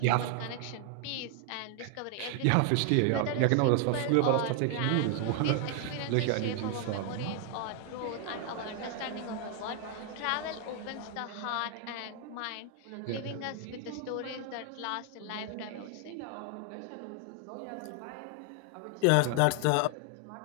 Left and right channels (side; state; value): both; different; correlation 0.00